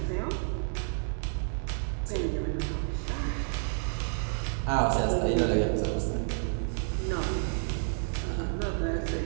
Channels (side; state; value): left; silent; digital silence